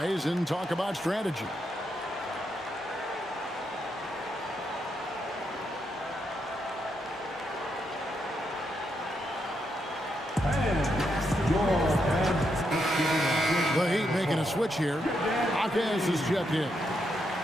and talk about strategy. The Heat making a switch here. Hawkins is checked in.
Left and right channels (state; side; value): normal; both; correlation 0.81